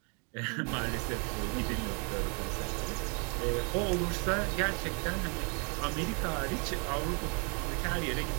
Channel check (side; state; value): left; quieter; 37.4 dB